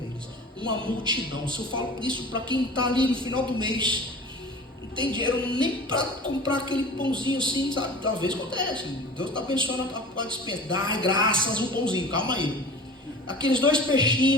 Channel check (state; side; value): normal; both; correlation 0.39